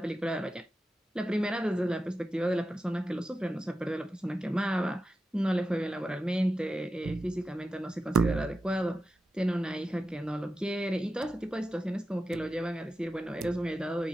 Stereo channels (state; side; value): normal; both; correlation 0.91